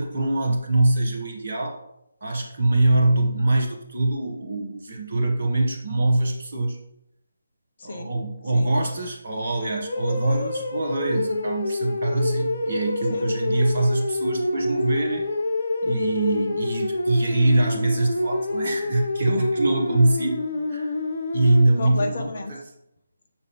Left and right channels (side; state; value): both; inverted; correlation -0.90